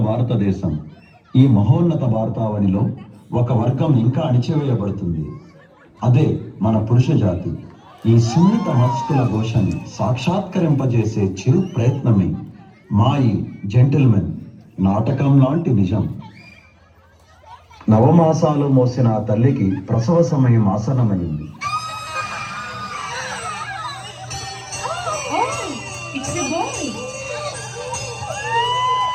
భారతదేశం. ఈ మహోన్నత భారతావనిలో ఒక వర్గం ఇంకా అణిచివేయబడుతుంది. అదే మన పురుష జాతి. ఈ సున్నిత మనస్కుల ఘోషని సాక్షాత్కరింపజేసే చిరు ప్రయత్నమే మా ఈ జెంటిల్మెన్ నాటకం లాంటి నిజం. నవమాసాలు మోసిన ఆ తల్లికి ప్రసవ సమయం ఆసన్నమైంది.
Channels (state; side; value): identical; both; correlation 1.00